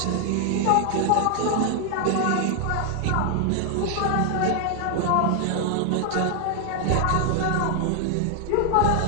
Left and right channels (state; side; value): different; both; correlation 0.00